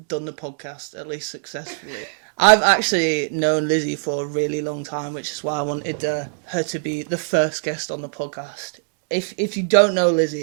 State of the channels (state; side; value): silent; left; digital silence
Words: done the podcast, at least successfully. I've actually known Lizzie for a really long time, which is why I wanted her to be the first guest on the podcast. If you don't know